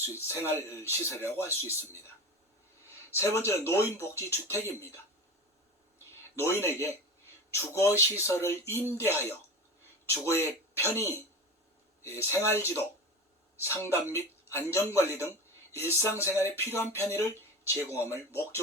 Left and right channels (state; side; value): normal; both; correlation 0.28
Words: 있습니다. 세 번째는 노인복지주택입니다. 노인에게 주거시설을 임대하여 주거의 편의, 생활지도, 상담 및 안전관리 등 일상생활에 필요한 편의를 제공함을